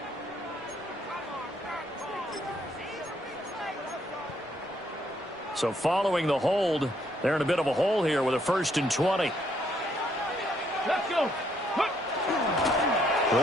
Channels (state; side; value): normal; both; correlation 0.70